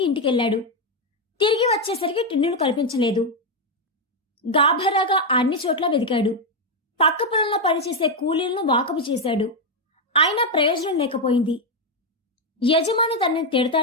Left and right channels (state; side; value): normal; both; correlation 0.04